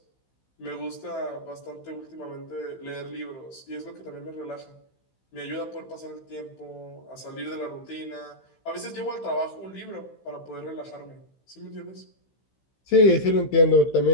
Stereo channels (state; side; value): late; right; 15 ms